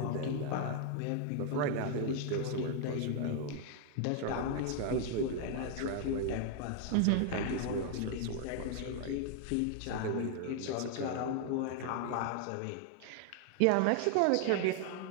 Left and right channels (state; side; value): different; both; correlation 0.00